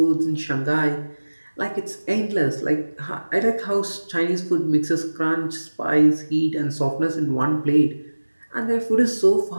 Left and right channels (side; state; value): both; inverted; correlation -1.00